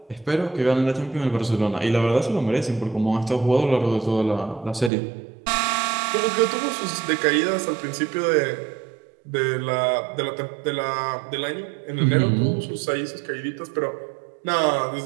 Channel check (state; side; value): drops out; left; at 4.9 s